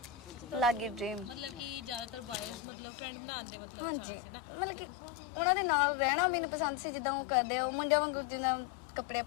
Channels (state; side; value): drops out; right; at 2.6 s